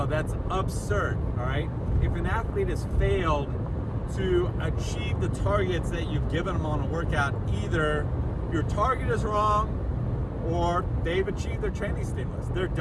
that's absurd, all right? If an athlete has failed to achieve the targets that you've given them on a workout, either your target is wrong or they've achieved their training stimulus. They're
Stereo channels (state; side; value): identical; both; correlation 1.00